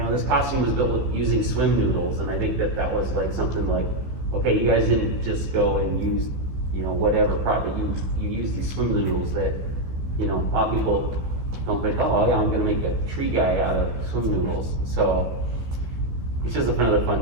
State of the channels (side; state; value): left; late; 15 ms